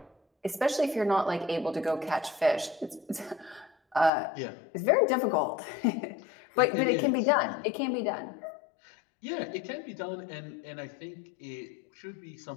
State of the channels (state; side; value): drops out; right; at 4.1 s